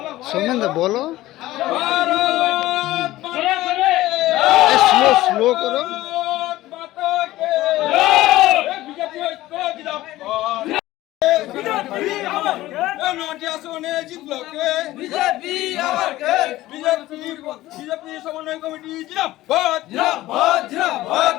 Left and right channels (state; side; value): quieter; right; 16.4 dB